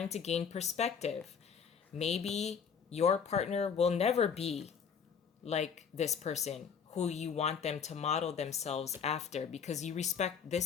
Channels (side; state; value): right; quieter; 6.8 dB